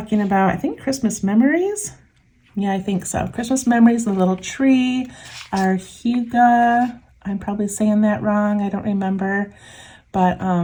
about, I think, Christmas memories. Yeah, I think so. Christmas memories, the little tree, our Huga. I'm probably saying that wrong. I don't remember. But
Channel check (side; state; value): both; identical; correlation 1.00